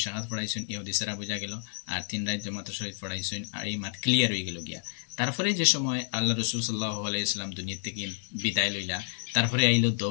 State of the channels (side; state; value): right; silent; 58 dB below the other